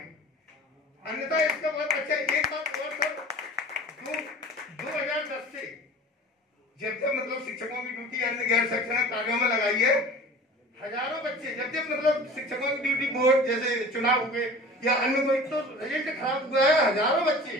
अन्यथा इसका बहुत अच्छा। एक बात और सर, 2010 से जब मतलब शिक्षकों की ड्यूटी अन्य गैर शैक्षणिक कार्यों में लगाई है, हजारों बच्चे जब मतलब शिक्षकों की ड्यूटी बोर्ड जैसे चुनाव हुए या अन्य कोई तो रिजल्ट खराब हुआ है, हजारों बच्चे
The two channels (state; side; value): normal; both; correlation 0.40